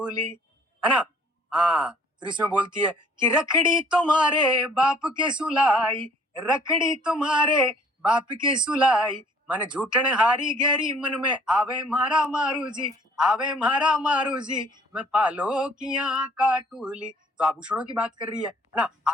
है ना। हाँ, फिर इसमें बोलती है कि रखड़ी तुम्हारे बाप के सुलाई, रखड़ी तुम्हारे बाप के सुलाई, मन झूठन हारी गहरी मन में आवे मारा मारू जी, आवे मारा मारू जी, मैं पालो किया काटूली। तो आभूषणों की बात कर रही है ना।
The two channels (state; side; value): normal; both; correlation 0.57